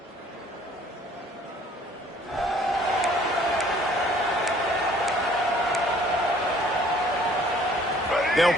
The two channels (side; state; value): both; normal; correlation 0.56